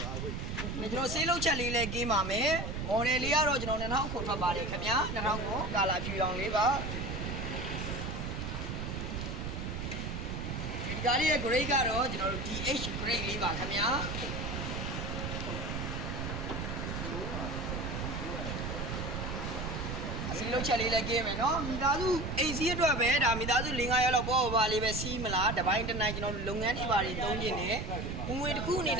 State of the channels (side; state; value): right; noise; rumble, 4 dB below the sound